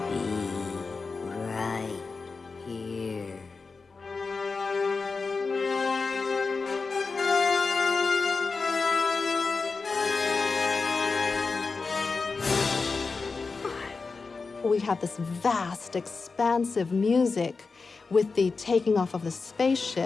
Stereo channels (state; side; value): quieter; right; 4.4 dB